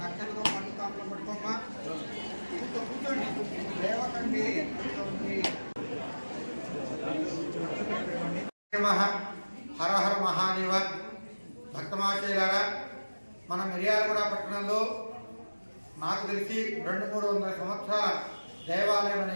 పండుతాంలో పట్టుకోమ్మా. కూర్చోండి, లేవకండి. హర హర మహాదేవ. భక్తమాశయులారా, మన మిర్యాలగూడ పట్టణంలో నాకు తెలిసి 200-300 సంవత్సరాల దేవాలయం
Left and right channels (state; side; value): inverted; both; correlation -1.00